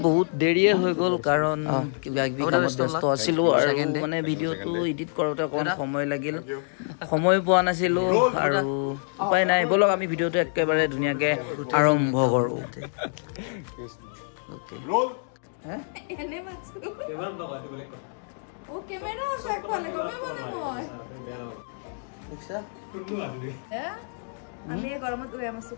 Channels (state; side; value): silent; right; digital silence